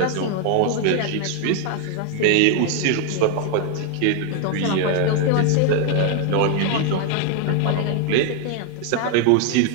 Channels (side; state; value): both; different; correlation 0.01